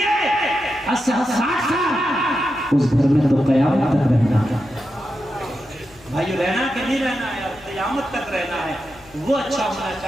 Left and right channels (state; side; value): noise; left; hum, 26 dB below the sound